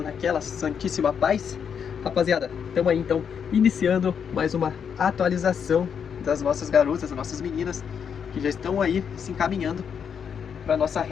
naquela santíssima paz? Rapaziada, estamos aí então iniciando mais uma atualização das nossas garotas, das nossas meninas que já estão aí se encaminhando para nossa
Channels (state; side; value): quieter; right; 7.3 dB